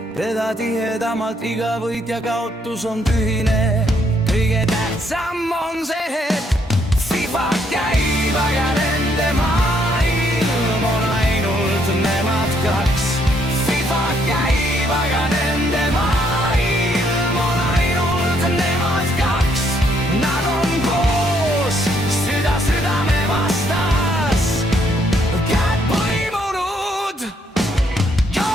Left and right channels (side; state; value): both; normal; correlation 0.71